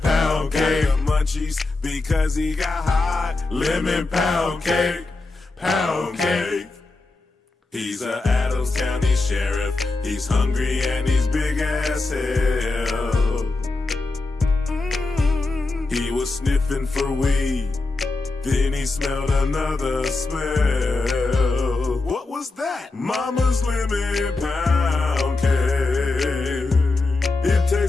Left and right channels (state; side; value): quieter; right; 3.4 dB